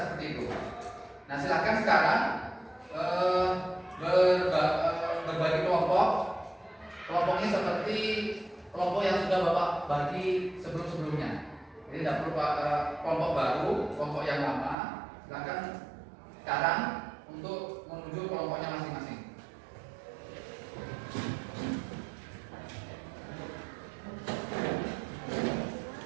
seperti itu. Nah silakan sekarang berbagi kelompok. Kelompoknya seperti kelompok yang sudah Bapak bagi sebelum-sebelumnya. Jadi tidak perlu kelompok baru, kelompok yang lama. Silakan sekarang untuk menuju kelompoknya masing-masing.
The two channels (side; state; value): left; drops out; at 14.8 s